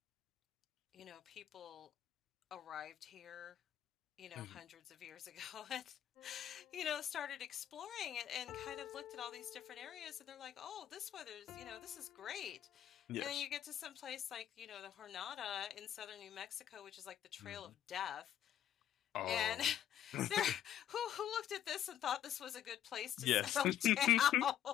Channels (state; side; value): quieter; right; 10.9 dB